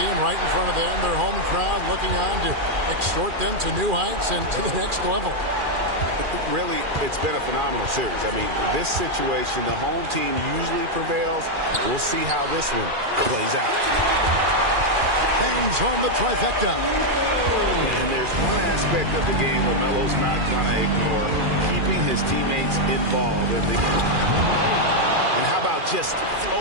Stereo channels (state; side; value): late; left; 2.4 ms